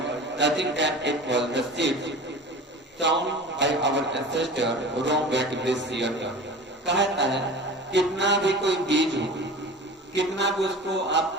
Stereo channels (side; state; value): both; normal; correlation 0.37